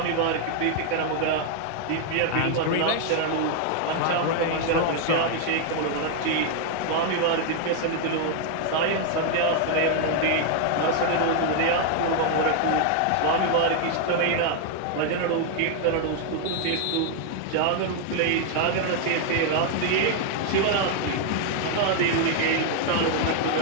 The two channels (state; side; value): different; both; correlation 0.00